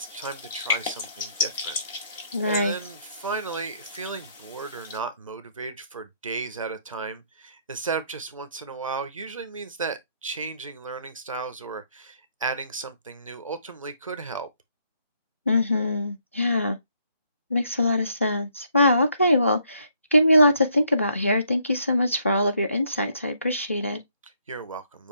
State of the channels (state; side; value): inverted; both; correlation -0.70